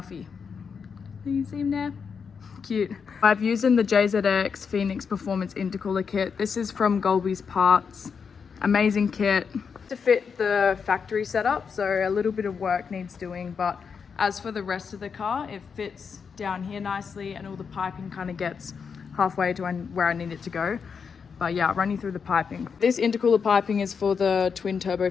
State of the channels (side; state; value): right; quieter; 6.1 dB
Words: Do you see him there? Cute. I've used in the JZX Phoenix Performance Intercooler kit. This is from Golby's Parts. Amazing kit. To fit the factory setup, so a little bit of work needs doing, but As for the rest of the car, it fits down here nicely and all the piping kind of gets halfway to where I need it to go. But yeah, I'll run you through the piping. This intercooler piping is for the twin turbo